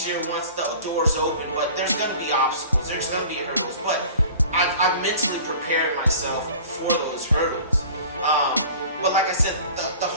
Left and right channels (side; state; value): both; inverted; correlation -0.43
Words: once the doors open, but there's going to be obstacles, there's going to be hurdles, but I've mentally prepared myself for those hurdles. But like I said, the